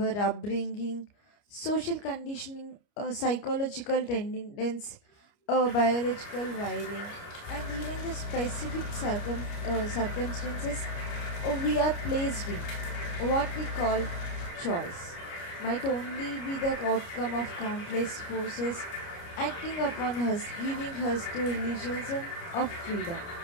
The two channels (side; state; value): right; late; 29 ms